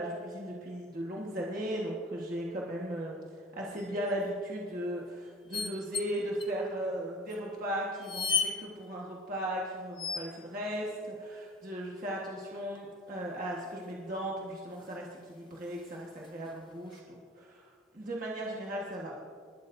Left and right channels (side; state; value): both; normal; correlation 0.44